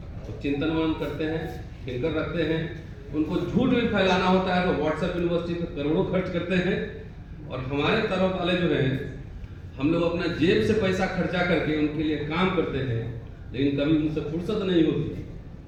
तो चिंतन मनन करते हैं, फिकर रखते हैं, उनको झूठ भी फैलाना होता है तो व्हाट्सएप यूनिवर्सिटी पर करोड़ों खर्च करते हैं। और हमारे तरफ वाले जो हैं, हम लोग अपना जेब से पैसा खर्चा करके उनके लिए काम करते हैं, लेकिन कभी उनसे फुर्सत नहीं होती।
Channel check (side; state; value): both; identical; correlation 1.00